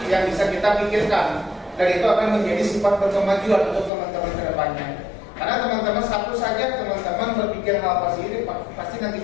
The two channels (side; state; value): right; drops out; at 3.9 s